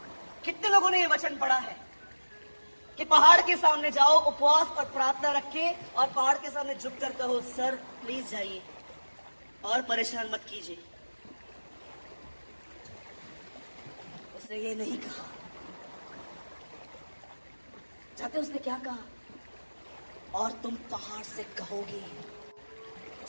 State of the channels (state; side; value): inverted; both; correlation -1.00